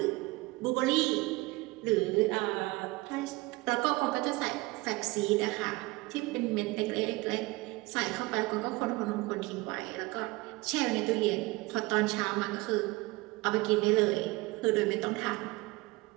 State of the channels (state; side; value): quieter; left; 22.4 dB